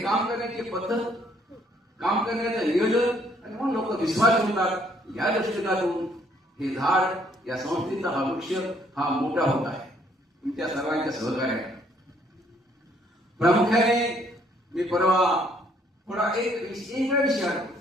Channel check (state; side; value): normal; both; correlation 0.66